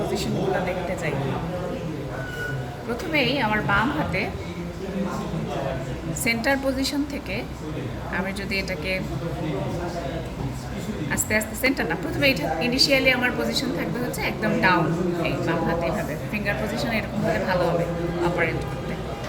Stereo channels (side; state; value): both; identical; correlation 1.00